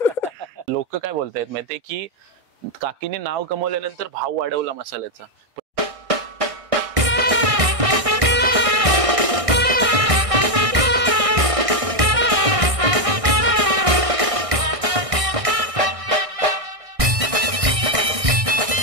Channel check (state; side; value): late; left; 1.6 ms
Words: लोक काय बोलतायत माहितीये की काकीने नाव कमवल्यानंतर भाव वाढवला मसाल्याचा.